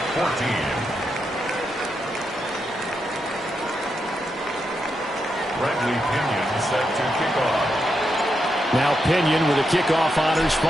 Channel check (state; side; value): normal; both; correlation 0.84